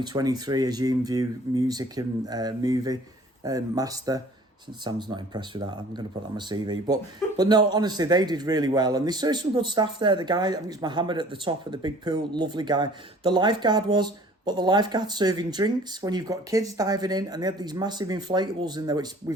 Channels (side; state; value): both; normal; correlation 0.50